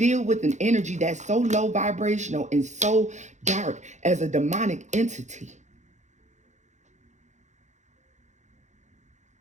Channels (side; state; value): left; late; 0.34 ms